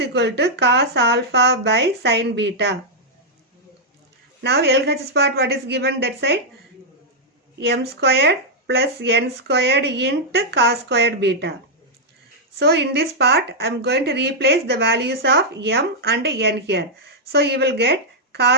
equal to cos alpha by sin beta. Now LHS part, what is given that side? M squared plus n squared into cos squared beta. So in this part I am going to replace the values of m and n here. So you will get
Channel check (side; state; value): both; normal; correlation -0.05